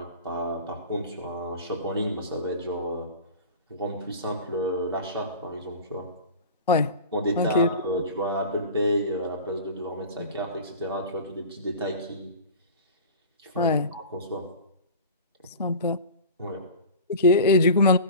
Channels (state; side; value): inverted; both; correlation -0.35